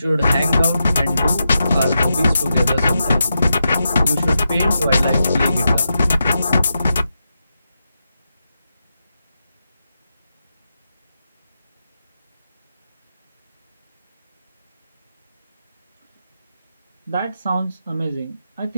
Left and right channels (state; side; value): inverted; both; correlation -0.87